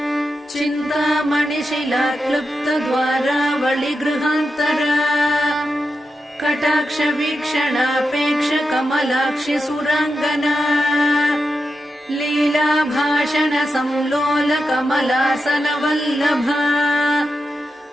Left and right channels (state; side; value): normal; both; correlation 0.88